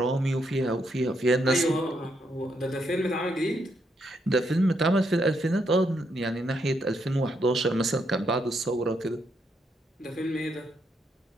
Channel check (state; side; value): normal; both; correlation 0.77